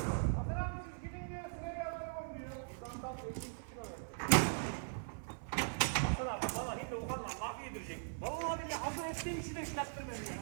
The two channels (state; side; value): silent; left; 51 dB below the other